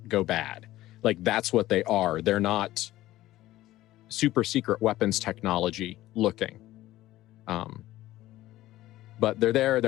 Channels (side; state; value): right; quieter; 15.7 dB